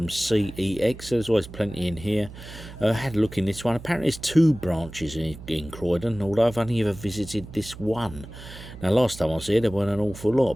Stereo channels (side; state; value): right; noise; hum, 15 dB below the sound